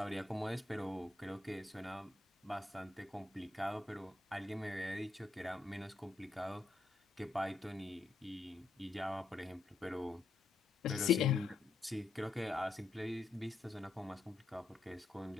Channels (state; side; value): quieter; right; 3.5 dB